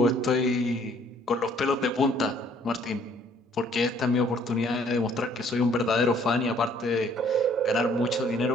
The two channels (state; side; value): normal; both; correlation 0.61